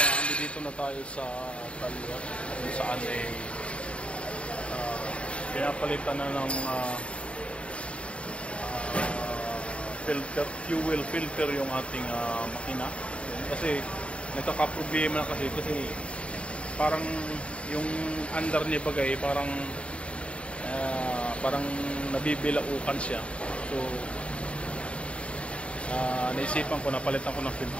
dito na tayo sa talyer kung saan pinapalitan na ng filter, fuel filter yung ating makina. Kasi nagkakaproblema na kasi parang yung under niya bagay parang nabibilaukan siya. So naisipan ko na palitan ko ng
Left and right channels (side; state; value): right; late; 0.061 ms